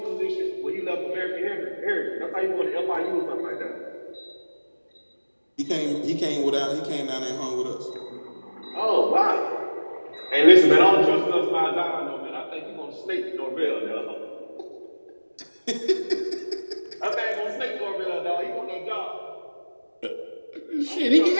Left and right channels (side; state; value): both; inverted; correlation -1.00